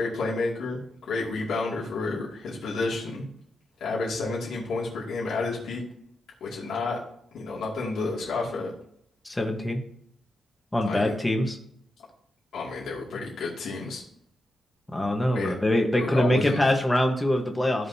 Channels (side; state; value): both; normal; correlation 0.88